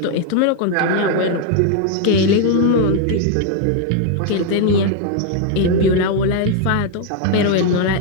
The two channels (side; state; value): both; different; correlation 0.00